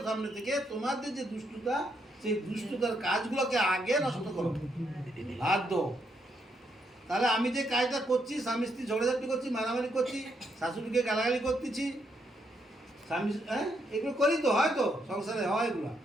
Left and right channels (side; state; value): both; normal; correlation 0.77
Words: সামনে থেকে তোমাদের যে দুষ্টতা, সেই দুষ্টতার কাজগুলোকে আগে নষ্ট করো, বাধ্য। তাহলে আমি যে কাজটা করছি, স্বামী স্ত্রী ঝগড়াঝাটি করছি, মারামারি করছি, শাশুড়িকে গালাগালি করতেছি, স্বামী এগুলো করি তো, হয় তো সংসারে হয় এগুলো।